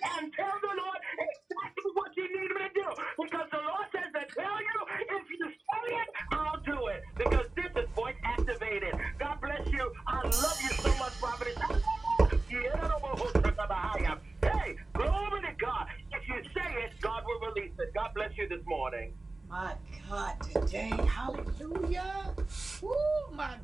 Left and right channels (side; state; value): left; quieter; 3.2 dB